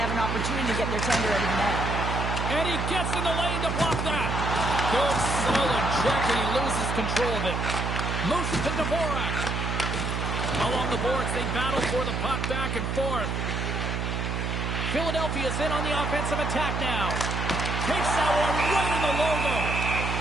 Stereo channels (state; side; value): noise; right; hum, 1 dB below the sound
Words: have an opportunity to get their tender out of the net. And he gets in the lane to block that. Good, solid check, and he loses control of it. Moves it to Dvorak. Along the boards, they battle for the puck back and forth. Philadelphia's in on the offensive attack now. Takes that one right in the logo.